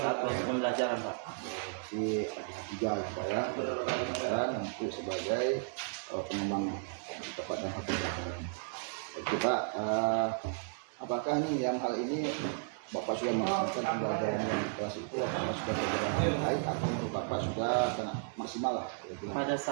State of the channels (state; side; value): silent; left; 55 dB below the other